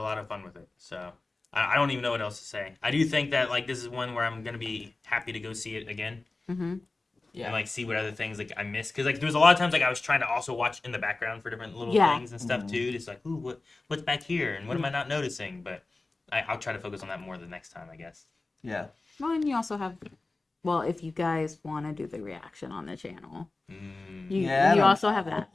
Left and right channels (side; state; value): right; quieter; 3.3 dB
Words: of fun with it. So I don't even know what else to say. I do think that like this is one where I'm gonna be happy to go see it again Mm-hmm. Yeah. and like see what other things like I missed because like there was a lot of times like I was trying to also watch in the background for different little Yeah. things and stuff too. Just like ooh, what's back here and what am I not noticing? But I'll try to focus on that more the next time, I guess. Yeah. Well, and you also have, well, if you guys want to do the reaction on the channel, you Yeah, also have that.